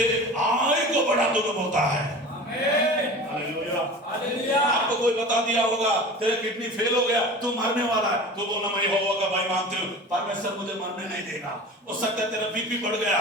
आयु को बढ़ा दूंगा, बोलता है। आपको कोई बता दिया होगा तेरा किडनी फेल हो गया, तू मरने वाला है, तो बोलना मैं यहोवा का भय मानती हूँ, परमेश्वर मुझे मरने नहीं देगा। हो सकता है तेरा बीपी बढ़ गया,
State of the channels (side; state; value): both; normal; correlation 0.36